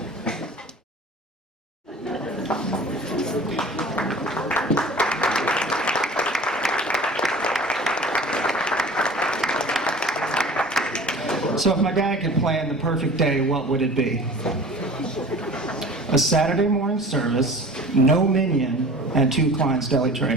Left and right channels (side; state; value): both; normal; correlation 0.41